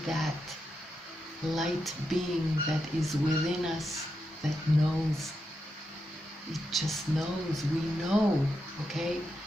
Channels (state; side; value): normal; both; correlation 0.85